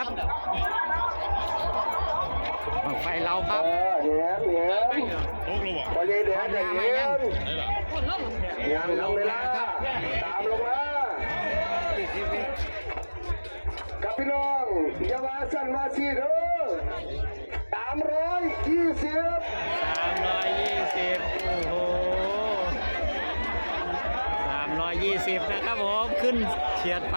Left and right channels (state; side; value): inverted; both; correlation -1.00